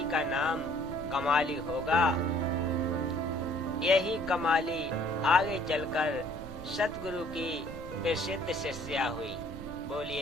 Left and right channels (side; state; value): right; noise; rumble, 12 dB below the sound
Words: का नाम कमाली होगा। यही कमाली आगे चलकर सतगुरु की प्रसिद्ध शिष्या हुई।